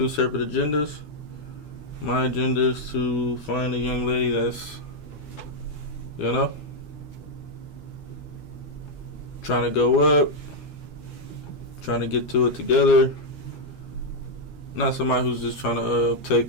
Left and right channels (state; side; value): late; right; 12 ms